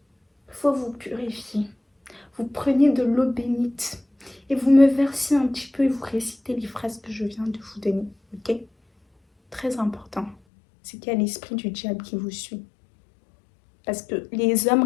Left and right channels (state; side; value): drops out; right; at 10.4 s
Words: il faut vous purifier. Vous prenez de l'eau bénite et vous me versez un petit peu et vous récitez les phrases que je viens de vous donner, ok? Très important, c'est qu'il y a l'esprit du diable qui vous suit. Parce que les hommes